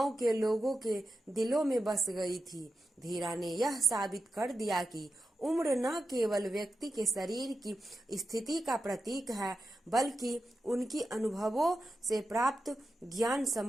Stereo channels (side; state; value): both; normal; correlation 0.90